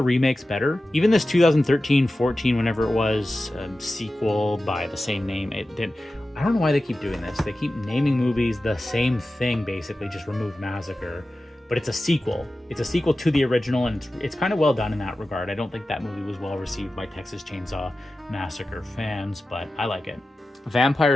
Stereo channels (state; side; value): normal; both; correlation 0.94